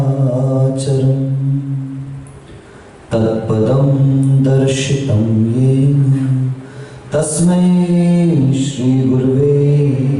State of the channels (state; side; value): identical; both; correlation 1.00